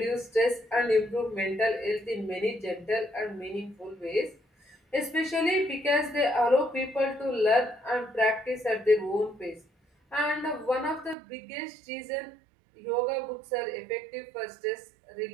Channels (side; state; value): left; drops out; at 11.2 s